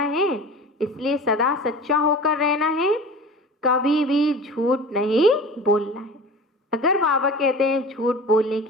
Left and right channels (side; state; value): both; normal; correlation 0.37